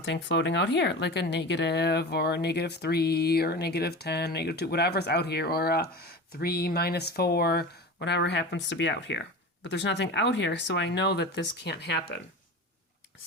floating out here, like a negative or a negative 3 or a negative 10, negative 2, whatever's out here, or a 3 minus 4, whatever happens to be out here. but there's nothing out here, so I know that this can't happen.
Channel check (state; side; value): normal; both; correlation 0.31